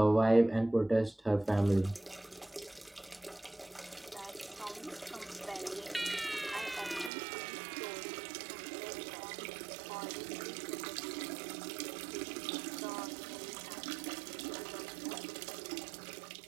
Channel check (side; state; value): left; drops out; at 7.1 s